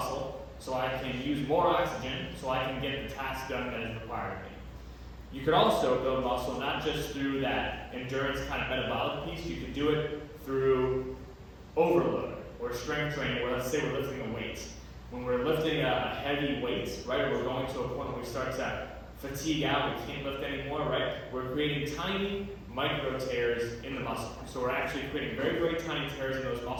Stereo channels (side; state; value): both; identical; correlation 1.00